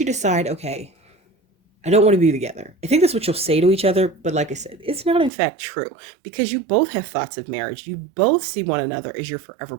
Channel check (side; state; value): left; drops out; at 5.3 s